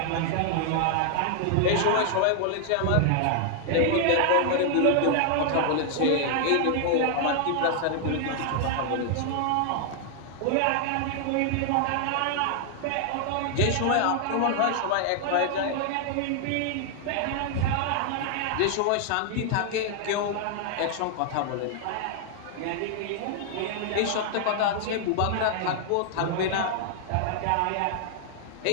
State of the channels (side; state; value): both; different; correlation 0.00